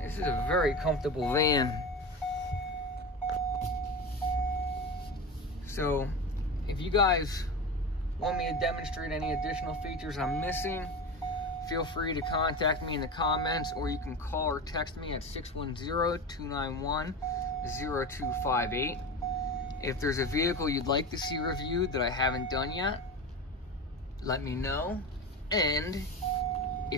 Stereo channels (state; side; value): normal; both; correlation 0.25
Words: This is a very comfortable van. So if you guys want me to demonstrate any additional features I'm missing, feel free to contact me in the comments, or you can call or text me at 610-291-0258. If there's a vehicle you'd like to see reviewed that I haven't done yet, let me know. And